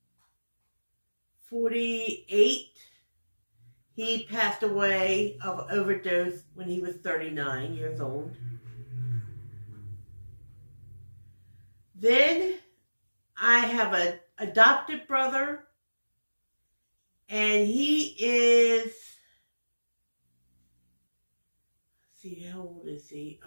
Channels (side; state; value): both; inverted; correlation -1.00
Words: 48. He passed away of overdose when he was 39 years old. Then I have an adopted brother, and he is, let's see, how old is he?